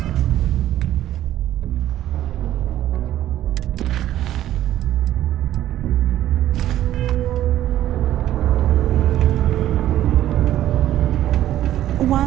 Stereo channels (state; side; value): quieter; left; 12.8 dB